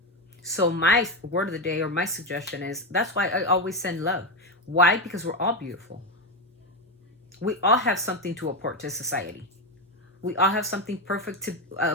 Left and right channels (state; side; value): normal; both; correlation 0.11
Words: So my word of the day, or my suggestion is, that's why I always send love. Why? Because we're all beautiful. We all have something to apport to society. We all have something perfect